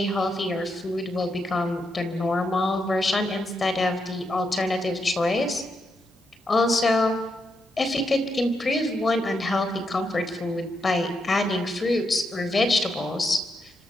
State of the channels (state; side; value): normal; both; correlation 0.82